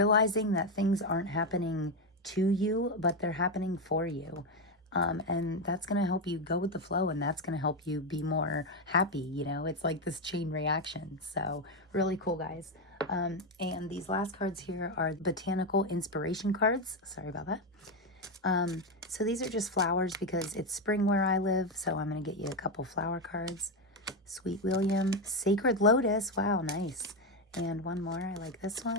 that things aren't happening to you, but they're happening for you. And that's going to help you go with the flow, and that's going to help you be more happy. You know, it's like this chain reaction. So really cool, guys. And these last cards here are botanical inspiration cards. Sorry about that. So these are just flowers because it's spring where I live. So I'm going to get you a couple flower cards. Sweet William, Sacred Lotus. Wow, nice. And one more. I like this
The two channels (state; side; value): normal; both; correlation 0.09